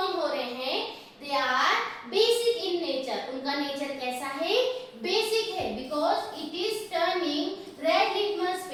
हो रहे हैं they are basic in nature. उनका नेचर कैसा है, बेसिक है, because it is turning red litmus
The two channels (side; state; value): both; identical; correlation 1.00